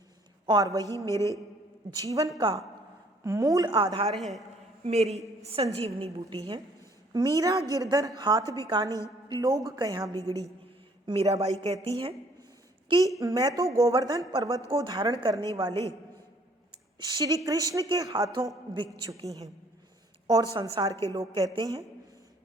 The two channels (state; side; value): normal; both; correlation 0.61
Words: और वही मेरे जीवन का मूल आधार है, मेरी संजीवनी बूटी है। मीरा गिरधर हाथ बिकानी लोग कहाँ बिगड़ी। मीराबाई कहती है कि मैं तो गोवर्धन पर्वत को धारण करने वाले श्री कृष्ण के हाथों बिक चुकी हैं और संसार के लोग कहते हैं